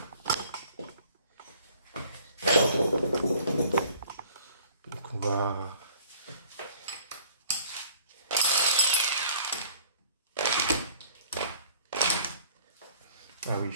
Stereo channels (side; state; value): both; inverted; correlation -0.53